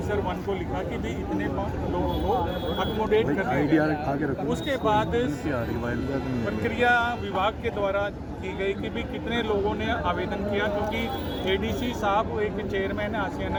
1 को लिखा कि भाई इतने लोगों को अकोमोडेट कर दिया। उसके बाद प्रक्रिया विभाग के द्वारा की गई कि भी कितने लोगों ने आवेदन किया, क्योंकि एडीसी साहब एक चेयरमैन है आसियाना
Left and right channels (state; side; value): identical; both; correlation 1.00